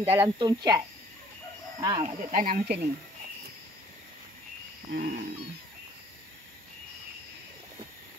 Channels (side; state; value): both; normal; correlation 0.58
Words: dalam tong cat. Mak Tok tanam macam ni.